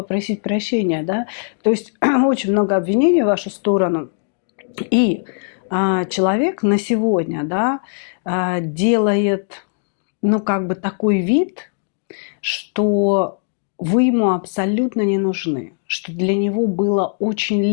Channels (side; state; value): right; silent; digital silence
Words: прощения, да, то есть очень много обвинений в вашу сторону. И человек на сегодня, да, делает, ну, как бы такой вид, что вы ему абсолютно не нужны, что для него было очень